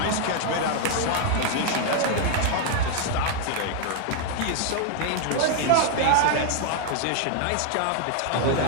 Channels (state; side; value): different; both; correlation 0.00